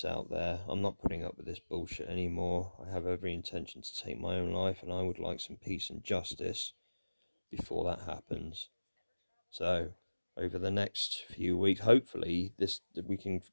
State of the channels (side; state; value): both; inverted; correlation -1.00